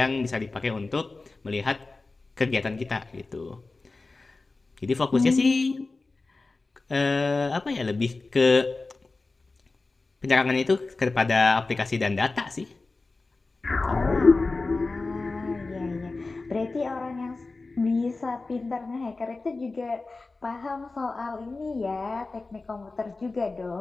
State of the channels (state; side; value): quieter; right; 3.6 dB